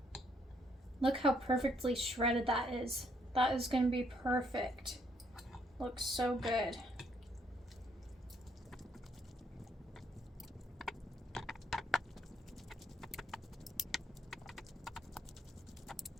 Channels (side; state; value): both; normal; correlation 0.70